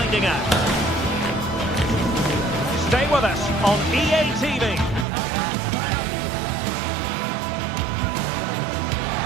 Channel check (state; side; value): drops out; left; at 5.1 s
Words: out. Stay with us on EA TV.